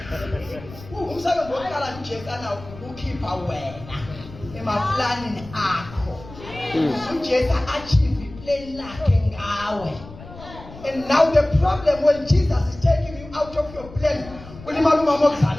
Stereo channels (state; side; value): noise; left; rumble, 17 dB below the sound